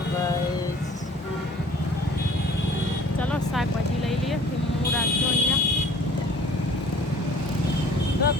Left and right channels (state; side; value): normal; both; correlation 0.50